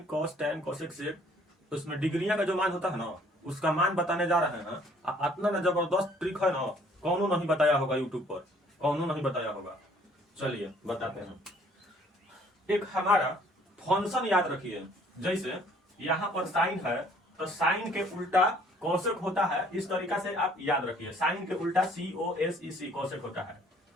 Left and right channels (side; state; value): both; normal; correlation 0.59